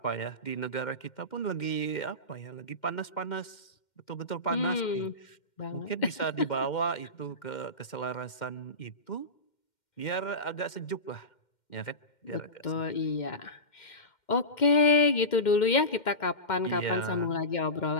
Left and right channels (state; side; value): late; right; 2.1 ms